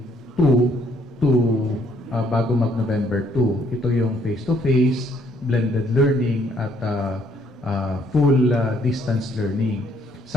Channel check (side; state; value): both; normal; correlation 0.67